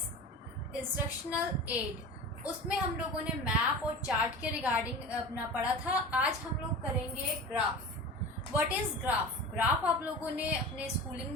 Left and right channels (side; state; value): both; normal; correlation 0.33